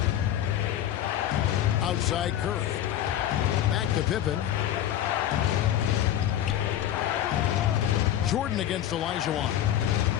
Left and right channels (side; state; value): right; quieter; 11.5 dB